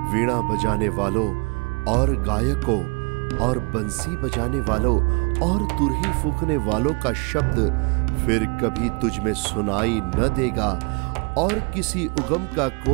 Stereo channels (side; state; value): left; quieter; 32.7 dB